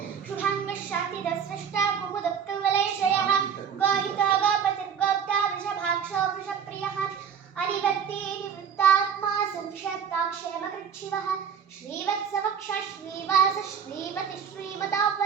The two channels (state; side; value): quieter; left; 7.4 dB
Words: शुभाङ्गः शान्तिदस्रष्टा कुमुदक्कवलयशयः गोहितो गोपतिर्गोप्ता वृषभाक्षो वृषप्रियः अनिवर्ती निवृत्तात्मा संक्षेप्ताक्षेमकृच्छिवः श्रीवत्सवक्षः श्रीवास श्रीमति